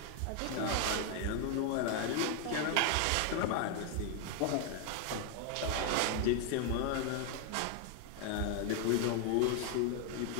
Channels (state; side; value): different; both; correlation 0.01